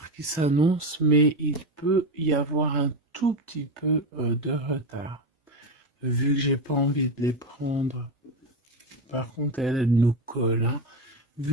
qui s'annonce, mais il peut y avoir un tout petit peu de retard. Vu que j'ai pas envie de les prendre. Par contre, elle nous colle, hein.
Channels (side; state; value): both; normal; correlation 0.16